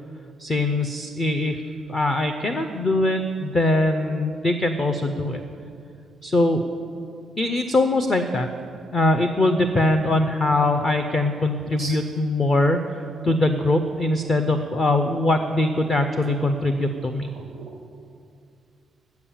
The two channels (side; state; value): both; normal; correlation 0.74